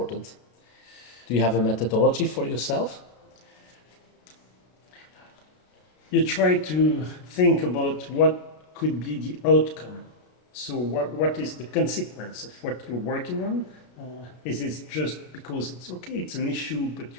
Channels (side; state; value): right; late; 33 ms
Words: Do you have a methodology for yourself? You try to think about what could be the outcome. So what is the consequence of what you're working on? Is it just because it's okay, it's an issue, but